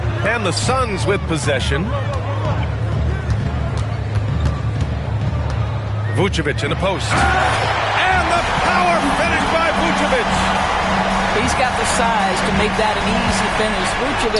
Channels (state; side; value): identical; both; correlation 1.00